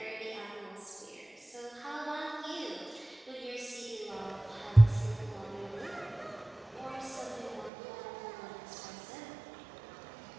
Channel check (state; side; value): drops out; left; at 7.7 s